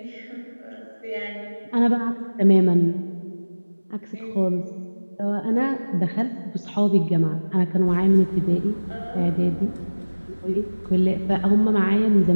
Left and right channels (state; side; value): inverted; both; correlation -1.00